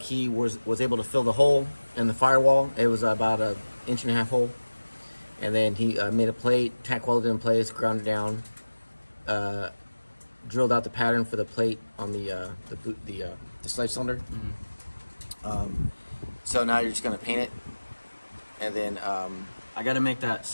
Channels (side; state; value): both; inverted; correlation -1.00